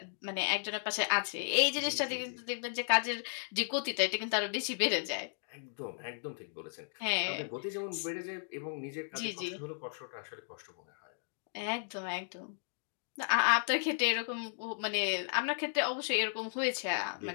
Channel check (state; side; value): silent; right; digital silence